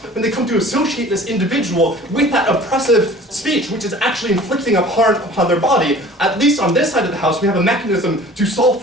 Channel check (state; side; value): normal; both; correlation 0.46